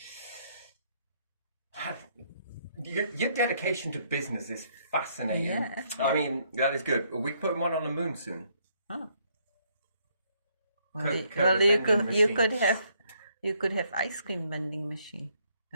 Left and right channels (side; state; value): both; inverted; correlation -0.70